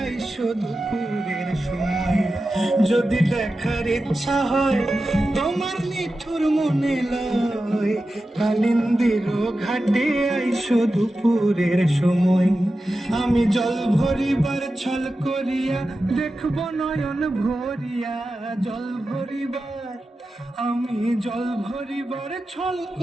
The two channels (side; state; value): both; normal; correlation 0.92